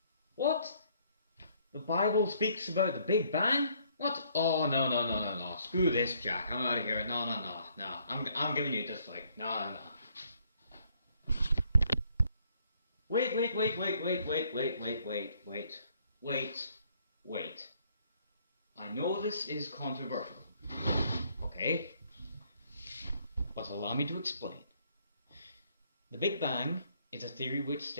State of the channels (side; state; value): both; inverted; correlation -0.66